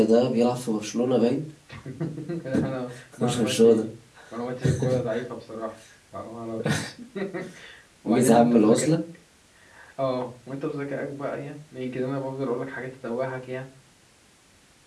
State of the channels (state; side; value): identical; both; correlation 1.00